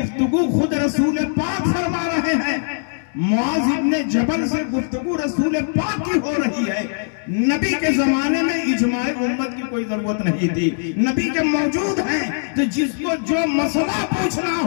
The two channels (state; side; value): silent; right; 65 dB below the other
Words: खुद रसूल पाक फरमा रहे हैं। मुआज़ इब्ने जबल से गुफ्तगू रसूल पाक की हो रही है। नबी के जमाने में इजमाए उम्मत की कोई जरूरत नहीं थी, नबी के मौजूद हैं, तो जिसको जो मसला पूछना